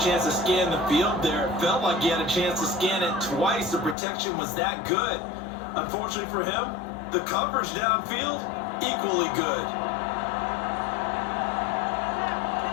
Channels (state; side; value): drops out; right; at 4.0 s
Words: to scan the field there, it felt like he had a chance to scan it twice. The protection was that good. Unfortunately for him, the coverage downfield, equally good.